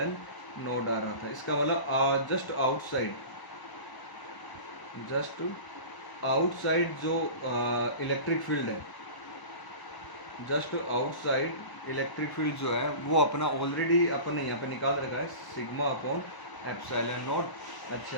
नॉट आ रहा था। इसका मतलब जस्ट आउटसाइड जो इलेक्ट्रिक फील्ड है, जस्ट आउटसाइड इलेक्ट्रिक फील्ड जो है वो अपना ऑलरेडी अपन ने यहाँ पे निकाल रखा है, सिग्मा अपॉन एप्सिलॉन नॉट।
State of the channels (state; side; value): late; right; 1.0 ms